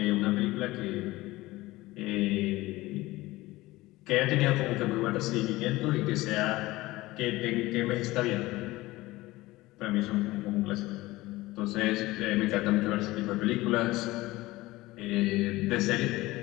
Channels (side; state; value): right; quieter; 19.0 dB